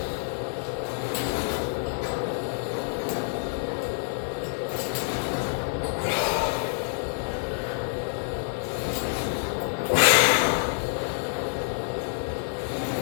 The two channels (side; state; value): right; silent; digital silence